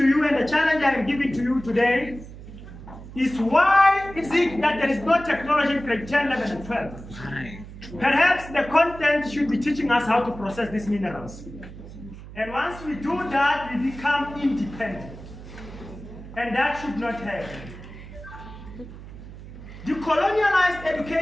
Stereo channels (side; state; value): right; noise; hum, 14 dB below the sound